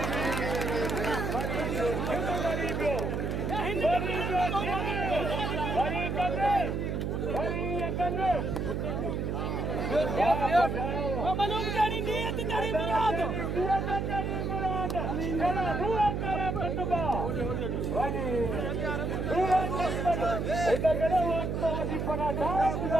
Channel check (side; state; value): right; noise; hum, 1 dB below the sound